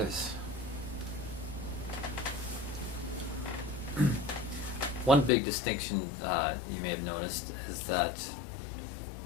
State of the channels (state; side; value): drops out; right; at 5.3 s